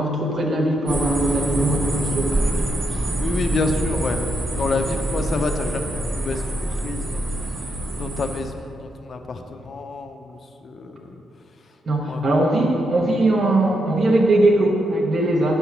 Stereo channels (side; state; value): both; normal; correlation 0.81